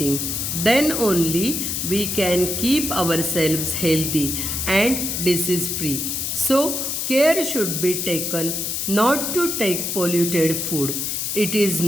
Then only we can keep ourselves healthy and disease free. So, care should be taken not to take polluted food. It is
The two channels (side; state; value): left; noise; hiss, 2 dB below the sound